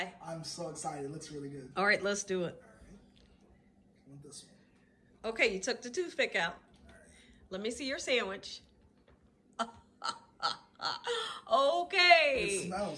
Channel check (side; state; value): both; identical; correlation 1.00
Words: I'm so excited. It looks really good. All right, let's do it. All right. I want this one. Okay, you took the toothpick out. All right. Let me see your sandwich. Okay. It